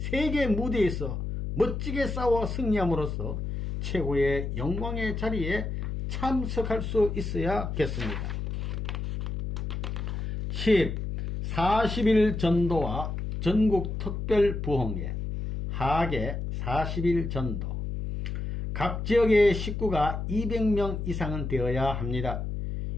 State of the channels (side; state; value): left; noise; hum, 4 dB below the sound